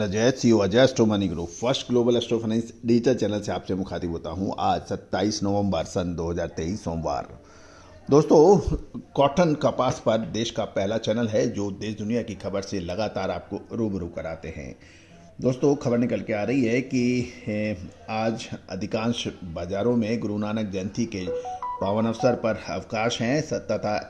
Ajay, CEO Ajay astro money group first global astro finance digital channel से आपसे मुखातिब होता हूं। आज 27 नवंबर सन 2023 सोमवार। दोस्तों, कॉटन कपास पर देश का पहला चैनल है जो देश दुनिया की खबर से लगातार आपको रूबरू कराते हैं। दोस्तों, खबर निकल के आ रही है कि आज अधिकांश बाजारों में गुरु नानक जयंती के पावन अवसर पर अवकाश हैं तथा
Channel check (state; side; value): identical; both; correlation 1.00